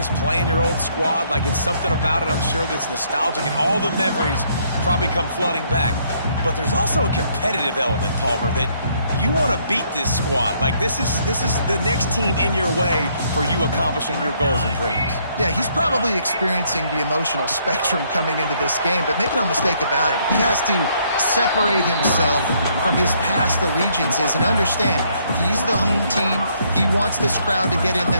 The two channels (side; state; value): both; inverted; correlation -0.68